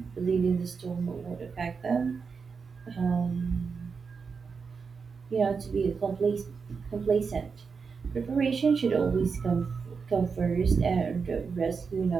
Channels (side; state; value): left; quieter; 5.4 dB